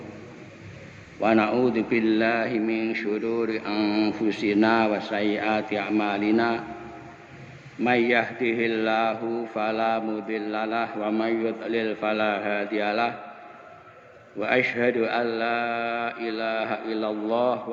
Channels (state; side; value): identical; both; correlation 1.00